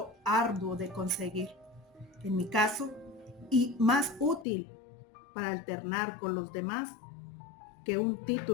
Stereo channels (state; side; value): drops out; right; at 4.5 s